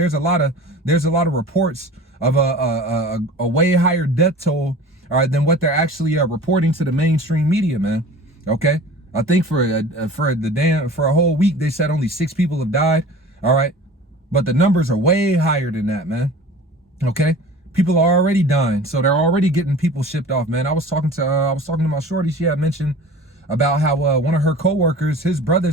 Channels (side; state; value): both; normal; correlation 0.41